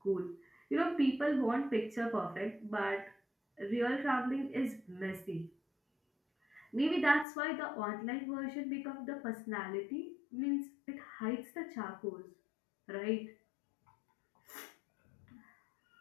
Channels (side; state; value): right; drops out; at 7.2 s